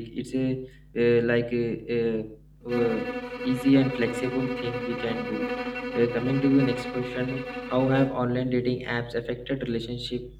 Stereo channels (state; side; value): identical; both; correlation 1.00